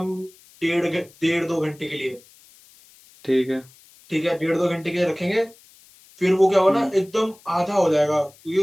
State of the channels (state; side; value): noise; left; hiss, 27 dB below the sound